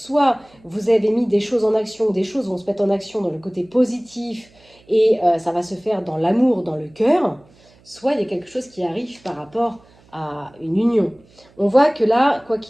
vous avez mis des choses en action, des choses vont se mettre en action dans le côté positif et ça va se faire dans l'amour, dans le cœur, soit il y a quelque chose qui arrive par rapport à une union. On voit que là, quoi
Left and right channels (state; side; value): noise; right; hum, 29 dB below the sound